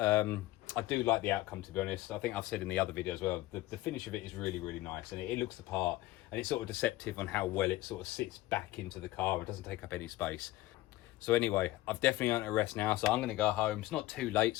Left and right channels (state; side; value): quieter; right; 17.3 dB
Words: I do like the outcome, to be honest. I think I've said in the other video as well, the finish of it is really, really nice, and it looks the part, and it's sort of deceptive on how well it sort of sits back into the car. It doesn't take up any space. So anyway, I've definitely earned a rest now, so I'm going to go home. It's not too late,